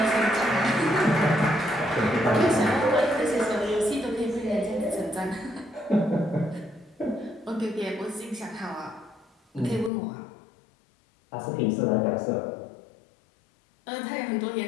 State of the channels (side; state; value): right; drops out; at 9.9 s